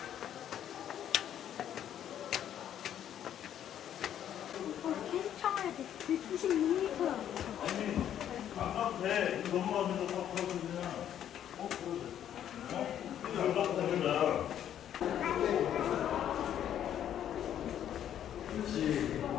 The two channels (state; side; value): quieter; right; 10.3 dB